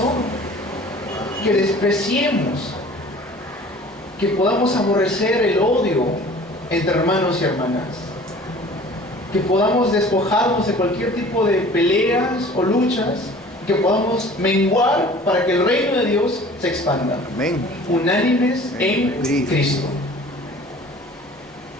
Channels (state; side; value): normal; both; correlation 0.47